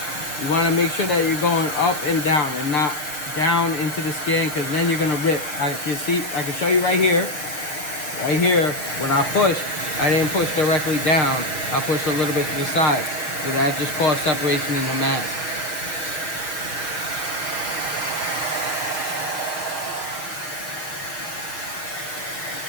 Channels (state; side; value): late; right; 6.8 ms